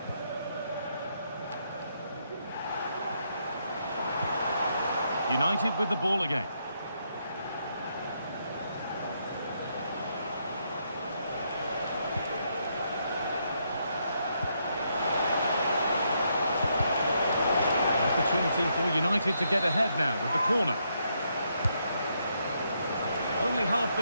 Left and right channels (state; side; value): inverted; both; correlation -0.77